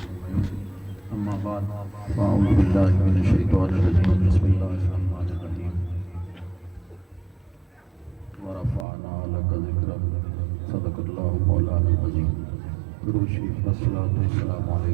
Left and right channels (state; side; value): drops out; left; at 8.8 s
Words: أجمعين أما بعد فأعوذ بالله من الشيطان الرجيم بسم الله الرحمن الرحيم ورفعنا لك ذكرك صدق الله مولانا العظيم درود شریف والصلاة والسلام